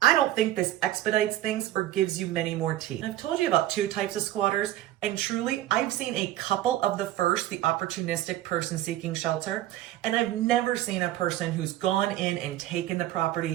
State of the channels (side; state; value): left; quieter; 14.1 dB